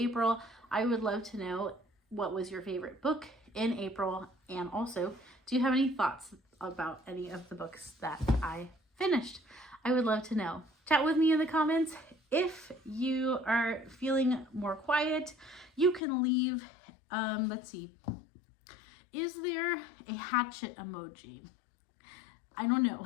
I would love to know what was your favorite book in April, and also, do you have any thoughts about any of the books that I finished? I would love to know. Chat with me in the comments. If you are feeling more quiet, you can leave, let's see, is there a hatchet emoji? I don't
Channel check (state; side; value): drops out; right; at 16.0 s